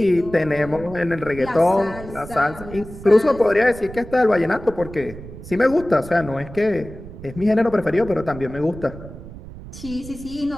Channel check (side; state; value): right; noise; rumble, 14 dB below the sound